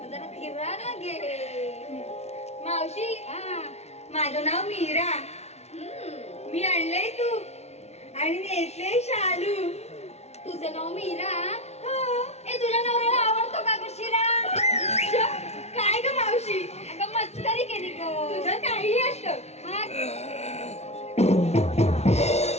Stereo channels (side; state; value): right; late; 0.31 ms